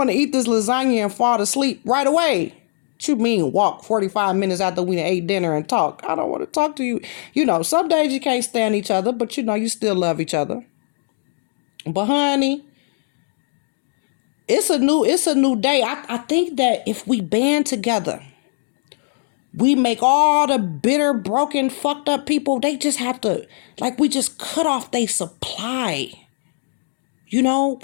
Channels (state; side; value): silent; right; digital silence